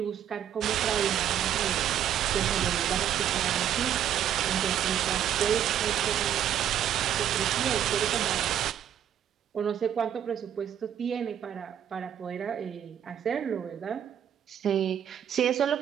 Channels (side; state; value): left; quieter; 9.9 dB